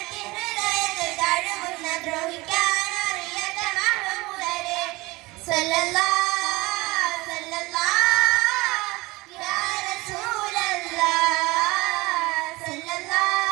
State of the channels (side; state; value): left; quieter; 21.9 dB